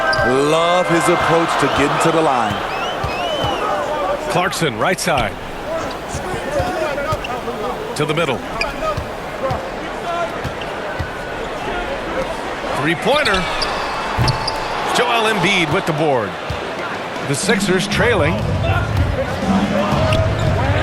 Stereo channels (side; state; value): both; identical; correlation 1.00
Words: Love his approach to getting to the line. Clarkson, right side. To the middle. Three-pointer. Joel Embiid with the board. The Sixers trailing.